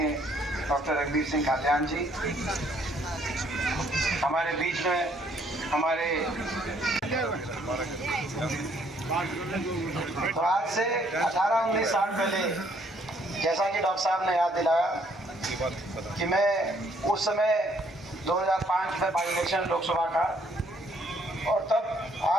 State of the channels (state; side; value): normal; both; correlation 0.66